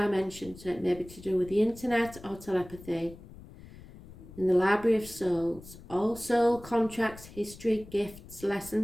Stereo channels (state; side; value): noise; left; rumble, 18 dB below the sound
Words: so it may be to do with the internet or telepathy. In the Library of Souls, all soul contracts, history, gifts,